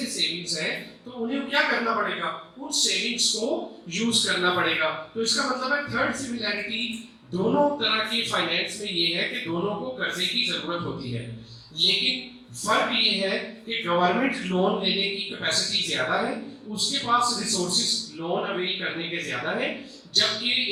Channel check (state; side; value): identical; both; correlation 1.00